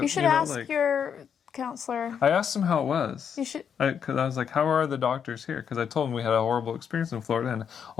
should ask your counselor. I asked him how it was. You should. Because I was like, how are the doctors here? Because I told him we had a horrible experience in Florida, and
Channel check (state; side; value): quieter; right; 7.7 dB